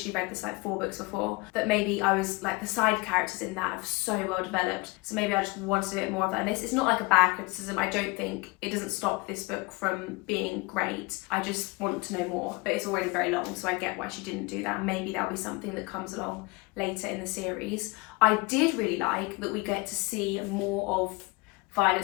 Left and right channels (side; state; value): right; quieter; 25.7 dB